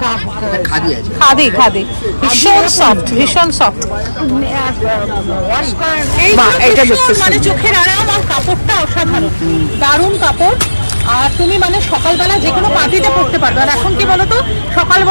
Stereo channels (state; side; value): inverted; both; correlation -1.00